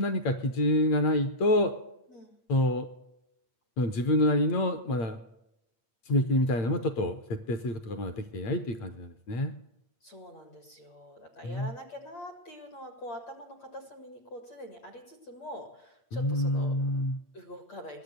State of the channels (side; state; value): right; late; 8.6 ms